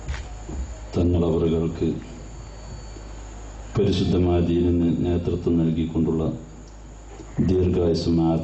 തങ്ങളവറുകൾക്ക് പരിശുദ്ധമായ ദീനിന് നേതൃത്വം നൽകിക്കൊണ്ടുള്ള ദീർഘായുസ്സും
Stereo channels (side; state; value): both; identical; correlation 1.00